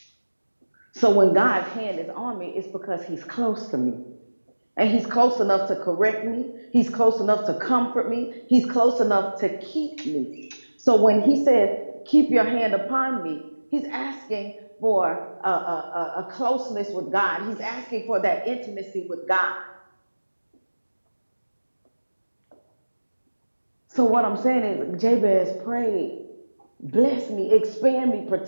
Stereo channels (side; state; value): both; inverted; correlation -1.00